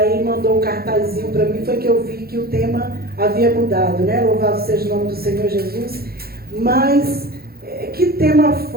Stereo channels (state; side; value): late; left; 0.45 ms